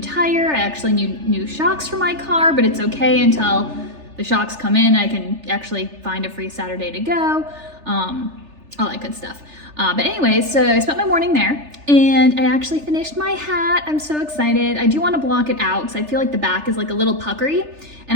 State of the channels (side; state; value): left; late; 3.4 ms